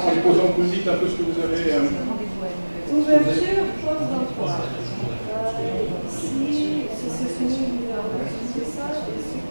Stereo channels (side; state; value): both; inverted; correlation -1.00